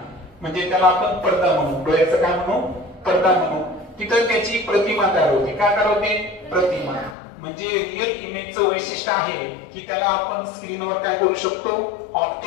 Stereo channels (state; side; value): drops out; right; at 7.2 s